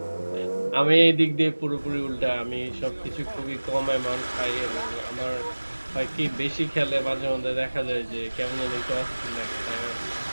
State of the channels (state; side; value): inverted; both; correlation -1.00